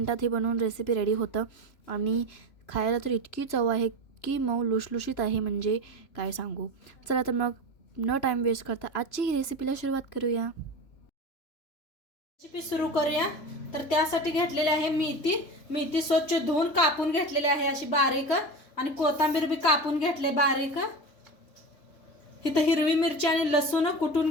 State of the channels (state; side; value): late; right; 3.1 ms